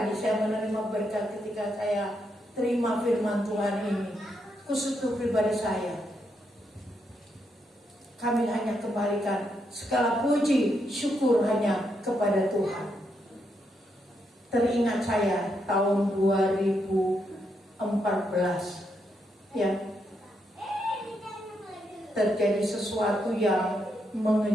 saya menerima berkat ketika saya terima firman Tuhan ini. Khusus untuk pribadi saya, kami hanya kembalikan segala puji syukur hanya kepada Tuhan. Teringat saya tahun 2014 terjadi sesuatu yang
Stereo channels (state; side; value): normal; both; correlation 0.80